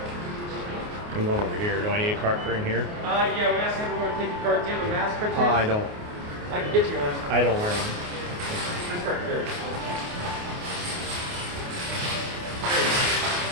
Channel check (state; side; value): late; left; 28 ms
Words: I'm going over here. Do I need a cart for in here? Yeah, we asked everyone to take your card. Do you have a mask for I don't. I can get you one. I don't wear them. This card here.